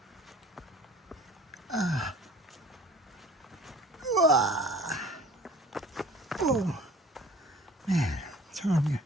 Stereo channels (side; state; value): both; normal; correlation 0.49